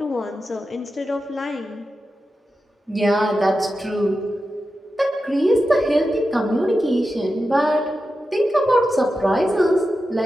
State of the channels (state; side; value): normal; both; correlation 0.91